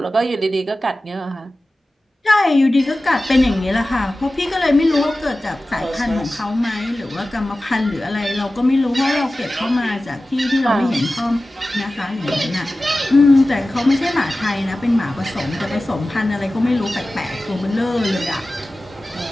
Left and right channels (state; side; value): normal; both; correlation 0.96